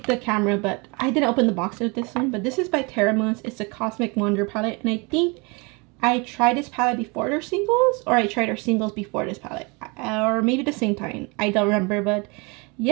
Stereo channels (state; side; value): quieter; left; 29.4 dB